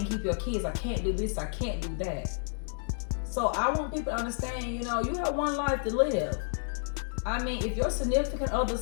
keep your kids. I can't do this. I can't do that. So I want people to understand, you have one life to live. I mean, if your significant other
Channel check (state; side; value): silent; right; digital silence